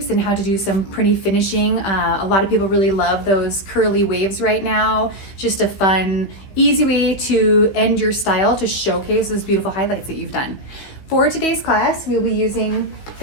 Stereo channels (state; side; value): late; right; 15 ms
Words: and how to do some pretty finishing. A lot of people really love those curly waves right now. Just a fun, easy way to end your style to showcase those beautiful highlights that you've done. For today's class, we'll be using